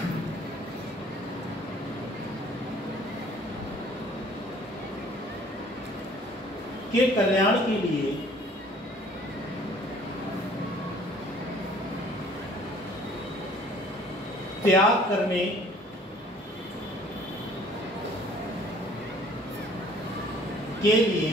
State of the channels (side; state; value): both; normal; correlation 0.55